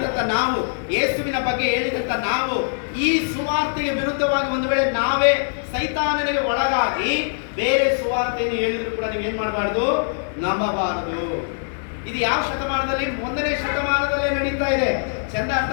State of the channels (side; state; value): right; silent; digital silence